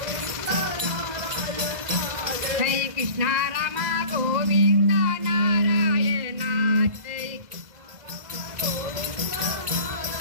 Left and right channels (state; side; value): late; left; 2.0 ms